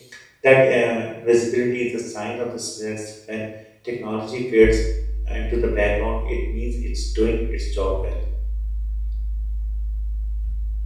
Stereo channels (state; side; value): identical; both; correlation 1.00